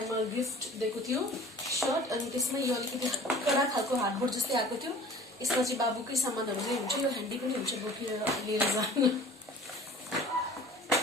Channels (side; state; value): both; normal; correlation 0.45